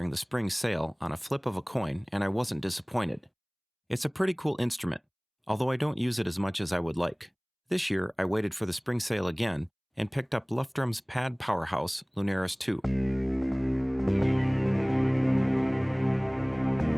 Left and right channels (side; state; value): both; identical; correlation 1.00